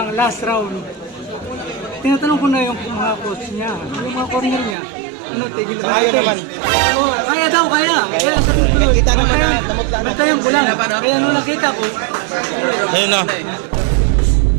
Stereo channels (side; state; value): left; drops out; at 4.8 s